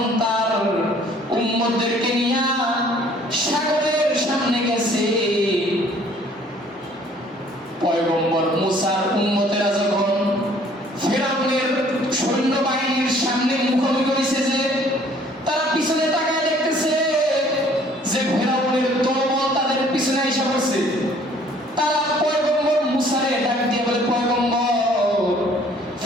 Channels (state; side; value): normal; both; correlation 0.57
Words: তার উম্মতদেরকে নিয়ে সাগরের সামনে গেছে, পয়গম্বর মুসার উম্মতেরা যখন ফিরআউনের সৈন্যবাহিনীর সামনে মুখোমুখি হয়েছে, যে তারা পিছনে তাকায় দেখতেছে যে ফিরআউনের দলবল তাদের পিছনে এসে পড়ছে, তারা পয়গম্বর মুসারে ডাক দিয়ে বলে, পয়গম্বর,